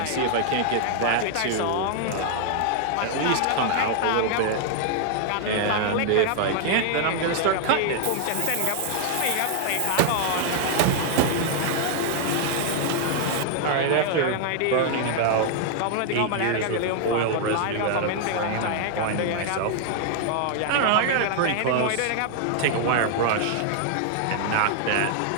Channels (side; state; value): both; different; correlation 0.00